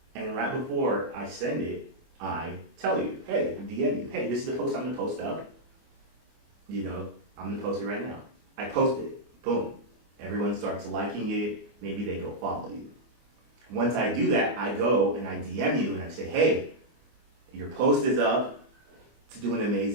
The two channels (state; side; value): late; left; 24 ms